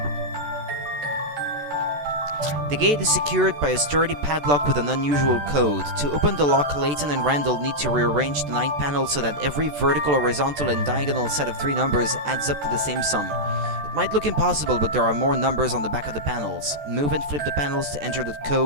The gate is secured by a sturdy padlock with an unusual code. To open the lock, Layton and Randall need to rearrange the 9 panels so that every vertical, horizontal, and diagonal set of 3 numbers adds up to the same sum. It might look impossible, but there are more numbers on the back of the panels. Move and flip the panels to enter the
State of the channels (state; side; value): late; left; 14 ms